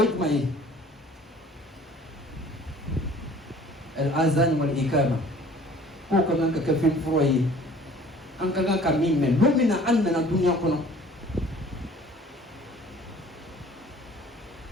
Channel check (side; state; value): both; normal; correlation 0.51